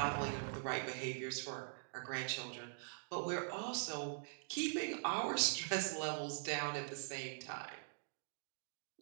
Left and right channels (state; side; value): silent; left; digital silence